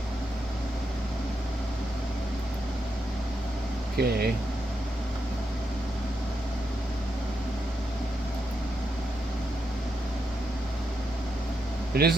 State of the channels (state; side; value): normal; both; correlation 0.83